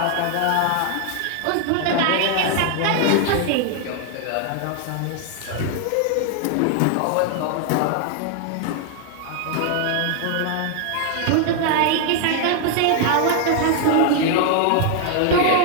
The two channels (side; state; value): both; different; correlation 0.00